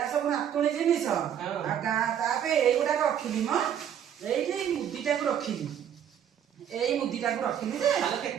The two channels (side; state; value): left; quieter; 9.3 dB